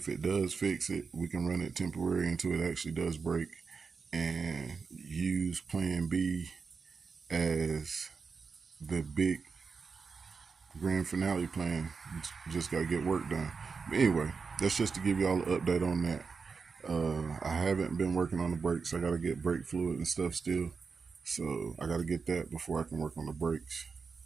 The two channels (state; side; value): quieter; left; 5.1 dB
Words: it does fix it, we can run it temporary until it actually does break and use plan B as the big grand finale plan. Just gotta get work done. But anyway, that's just to give y'all an update on that. I haven't been working on the brakes. I gotta get brake fluid and stuff still, so I gotta get that before I can work on the brakes